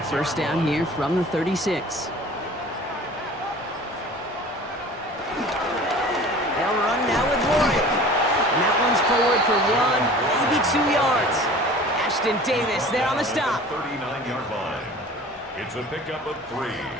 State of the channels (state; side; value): normal; both; correlation 0.43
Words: first down here from the 36. They'll run now with Warren. And that one's forward for 1, maybe 2 yards. Ashton Davis there on the stop. 39-yard line. It's a pickup of 3.